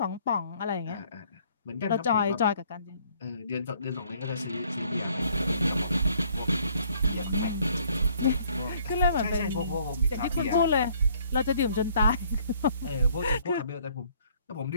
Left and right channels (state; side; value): inverted; both; correlation -0.62